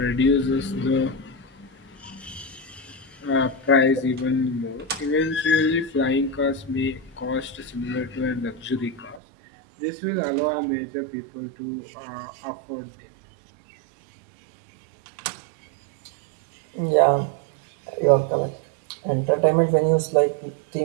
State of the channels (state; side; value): drops out; left; at 9.2 s